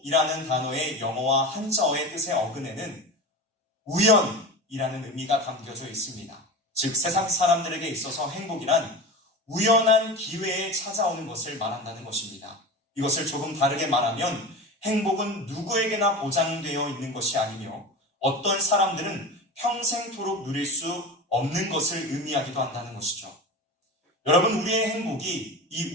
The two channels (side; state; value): both; normal; correlation 0.28